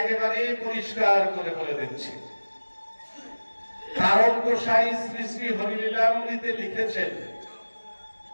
পরিষ্কার করে বলে দিচ্ছি। তারক গোসাই শ্রী শ্রী হরিলীলামৃতে লিখেছেন,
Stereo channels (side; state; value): both; inverted; correlation -1.00